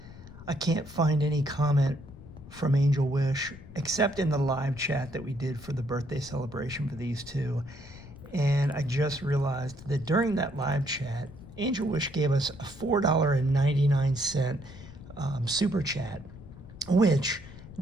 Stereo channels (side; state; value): left; noise; rumble, 17 dB below the sound